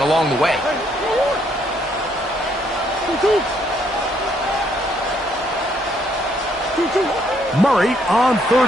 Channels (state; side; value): normal; both; correlation 0.70